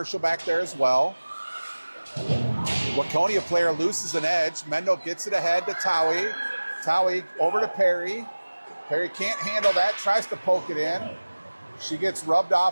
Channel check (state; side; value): inverted; both; correlation -1.00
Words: back there as well. Waconia player loses an edge. Mendel gets it ahead to Towie. Towie over to Perry. Perry can't handle that. Tries to poke it in. She gets rubbed